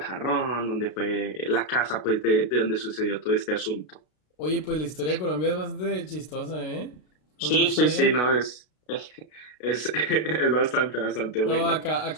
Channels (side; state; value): right; late; 33 ms